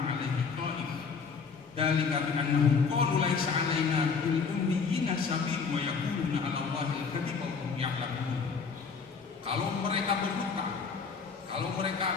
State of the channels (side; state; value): right; quieter; 5.4 dB